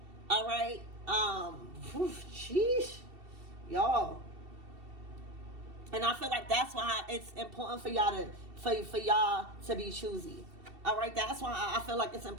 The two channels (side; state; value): left; late; 2.7 ms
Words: All right? Sheesh. Y'all. And I feel like that's why it's important for y'all to be choosy. All right, that's why I feel like it's